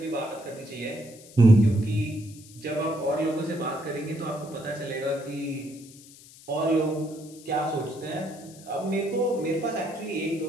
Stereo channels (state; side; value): noise; left; hiss, 21 dB below the sound